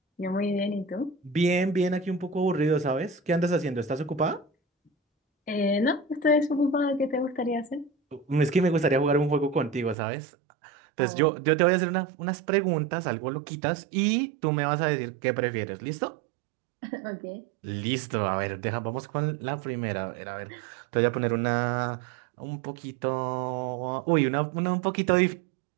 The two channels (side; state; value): left; drops out; at 10.0 s